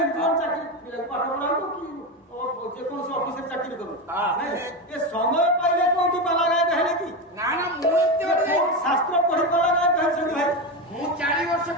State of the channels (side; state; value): both; normal; correlation 0.16